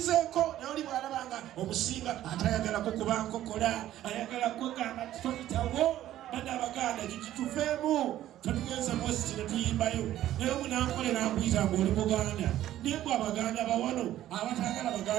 naye oli bw'alabanga omusinga atayagalako kuba nkokola ayagala kwegamba toyitawo. Bana Abaganda kituveemu tuligenza mwezi kino tuyimbayo naye munankole nakuyita ng'oli Buganda naye bwe Abaganda bawano abatagala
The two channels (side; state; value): left; quieter; 13.1 dB